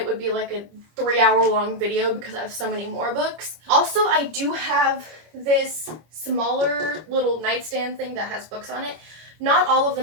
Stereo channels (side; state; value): left; late; 25 ms